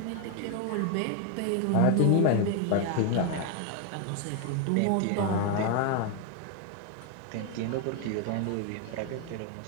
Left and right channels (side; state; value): both; different; correlation 0.01